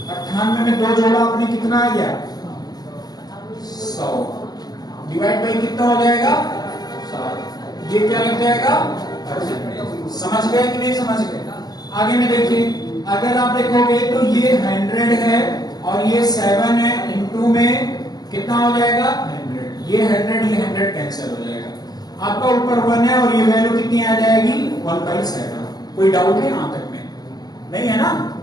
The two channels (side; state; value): right; late; 0.19 ms